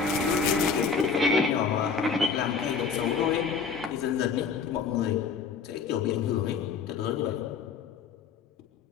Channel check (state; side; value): quieter; right; 5.7 dB